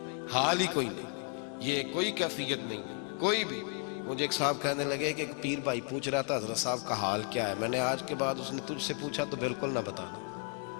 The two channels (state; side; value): quieter; right; 36.9 dB